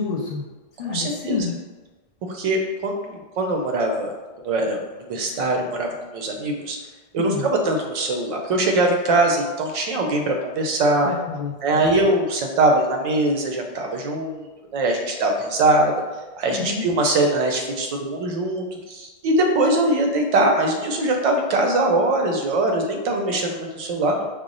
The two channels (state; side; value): late; left; 1.6 ms